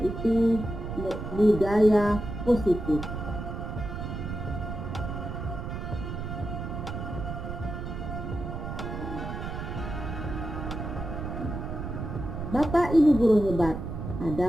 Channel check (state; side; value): noise; right; rumble, 6 dB below the sound